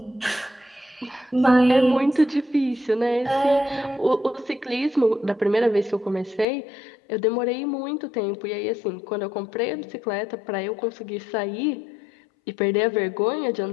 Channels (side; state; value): right; drops out; at 6.5 s